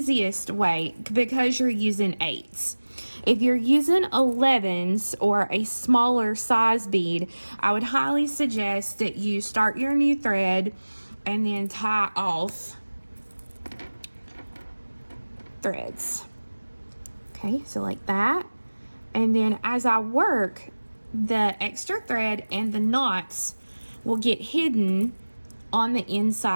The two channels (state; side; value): inverted; both; correlation -1.00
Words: way because you're using 8s. If you're using 11s or a smaller size bead, I would highly suggest that you start your new thread and then tie off threads. Okay, so like that. And then as I work, the extra thread and the knots will get hidden on the